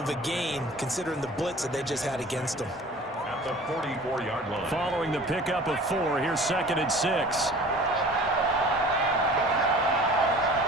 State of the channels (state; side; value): normal; both; correlation 0.44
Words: a gain considering the blitz that they just had against them. At the 44-yard line. Following the pickup of 4, here's 2nd and 6.